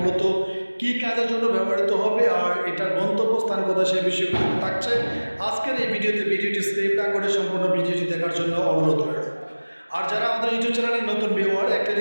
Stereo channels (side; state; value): both; inverted; correlation -1.00